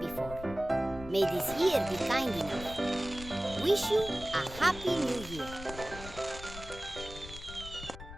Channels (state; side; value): noise; left; rumble, 13 dB below the sound